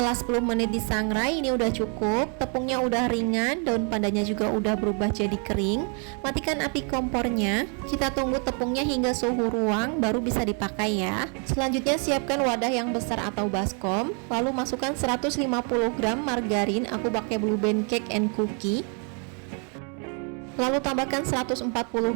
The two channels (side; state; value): left; quieter; 39.6 dB